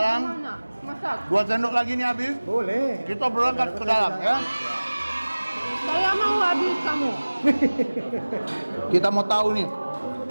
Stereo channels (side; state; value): both; inverted; correlation -1.00